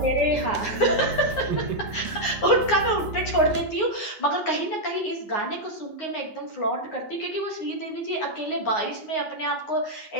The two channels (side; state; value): right; late; 9.5 ms